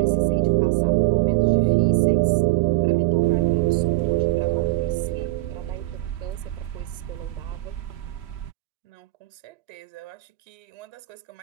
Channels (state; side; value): quieter; left; 19.7 dB